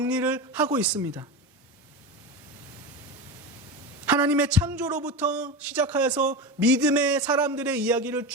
하고 있습니다. 하나님의 창조로부터 시작하여서 믿음의 사람들의 이야기를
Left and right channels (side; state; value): both; normal; correlation 0.22